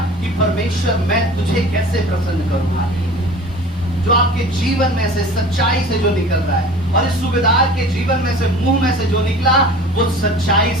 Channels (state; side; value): normal; both; correlation 0.42